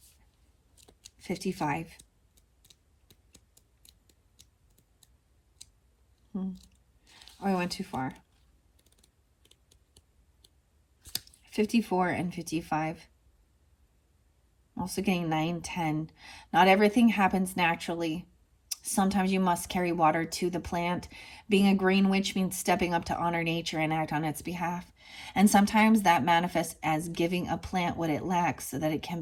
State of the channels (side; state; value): both; identical; correlation 1.00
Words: 55. Oh, I went too far. 54 and 55. Also getting 9, 10. Not everything happens naturally. Sometimes you must carry water to the plant. Being a green witch means stepping up to honor nature and act on its behalf. And sometimes that manifests as giving a plant what it lacks so that it